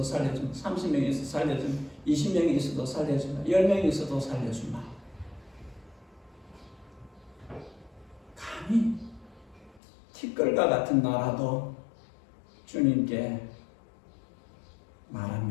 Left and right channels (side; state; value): right; drops out; at 9.8 s